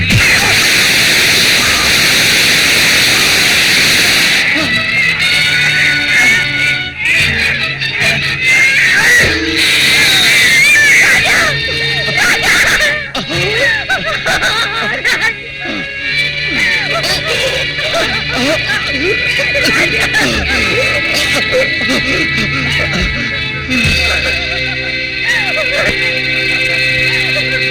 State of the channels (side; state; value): both; identical; correlation 1.00